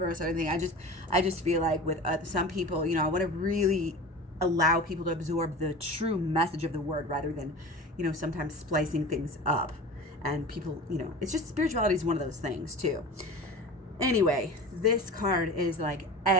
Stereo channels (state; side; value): normal; both; correlation 0.34